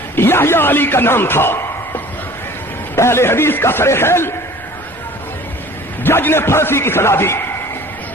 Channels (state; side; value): normal; both; correlation 0.47